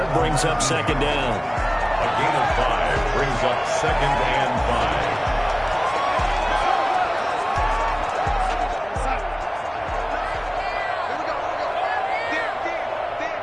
brings up 2nd down. A gain of 5 brings up 2nd and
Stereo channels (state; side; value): identical; both; correlation 1.00